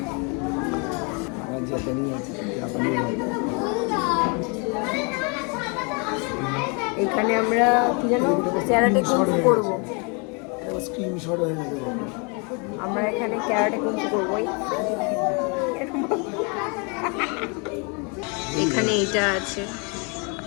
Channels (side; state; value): right; quieter; 33.7 dB